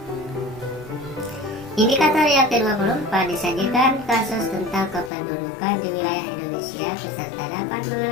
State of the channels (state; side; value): drops out; right; at 5.1 s